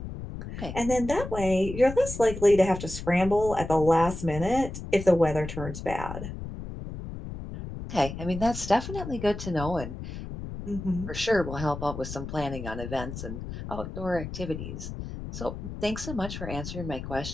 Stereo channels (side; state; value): left; noise; rumble, 9 dB below the sound